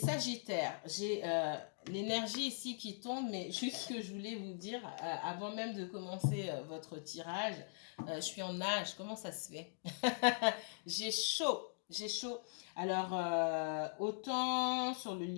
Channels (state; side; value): silent; right; digital silence